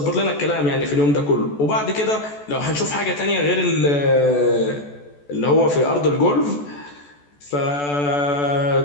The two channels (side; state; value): right; late; 14 ms